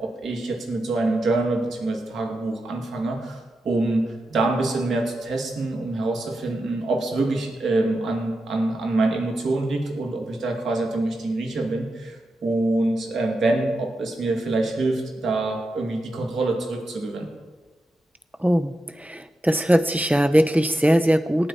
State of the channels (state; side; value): normal; both; correlation 0.89